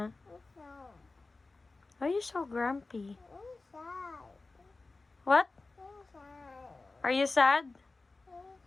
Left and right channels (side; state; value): right; quieter; 3.5 dB